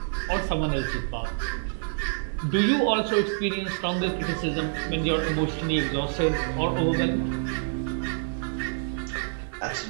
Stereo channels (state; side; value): silent; left; digital silence